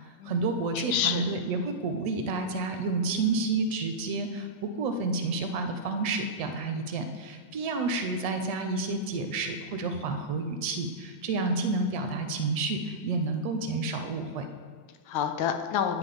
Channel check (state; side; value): late; right; 1.7 ms